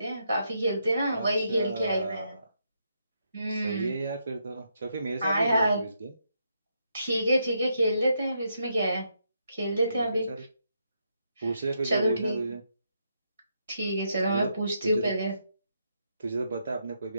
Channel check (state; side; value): inverted; both; correlation -0.79